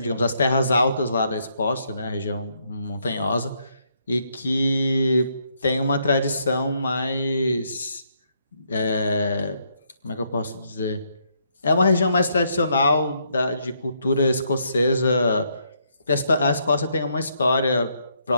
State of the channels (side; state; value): both; inverted; correlation -0.74